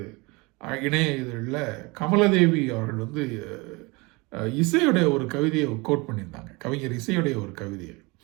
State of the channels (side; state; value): left; quieter; 25.8 dB